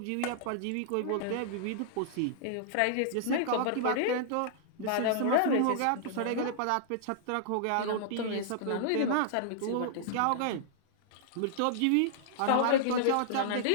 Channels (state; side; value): different; both; correlation -0.01